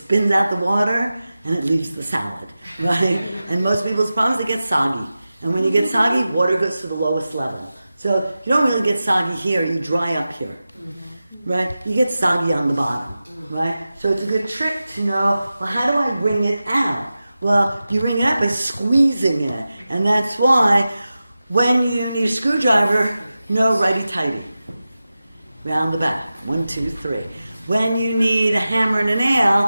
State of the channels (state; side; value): inverted; both; correlation -0.94